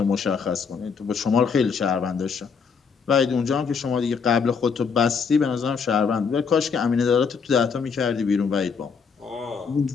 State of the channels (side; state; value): right; quieter; 5.8 dB